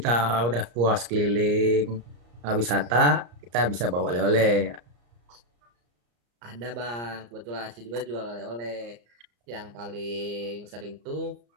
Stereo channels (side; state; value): left; late; 34 ms